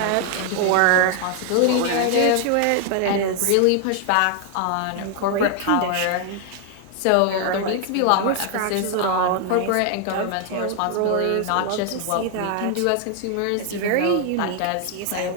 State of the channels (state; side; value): different; both; correlation 0.00